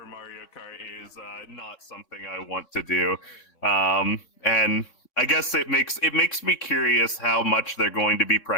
Mario Kart is not something I want to do, and I guess it makes me curious how much they're going to be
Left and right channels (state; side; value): late; right; 3.6 ms